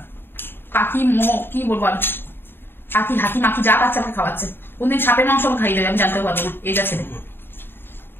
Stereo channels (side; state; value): right; late; 0.10 ms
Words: পাখি কি বলবো আমি পাখি হাতি মাখি যা পাচ্ছে আমাকে খাওয়াচ্ছে কোনদিন সাপের মাংস আমাকে খাইয়ে দেবে আমি জানতে পারবো না এই যাচ্ছে